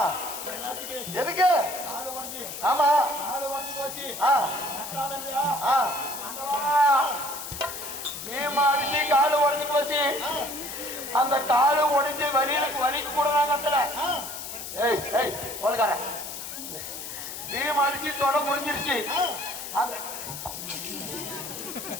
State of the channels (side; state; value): left; noise; hiss, 8 dB below the sound